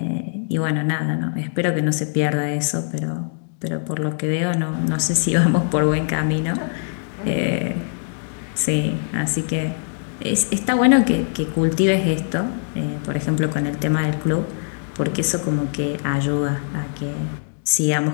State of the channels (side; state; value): right; silent; digital silence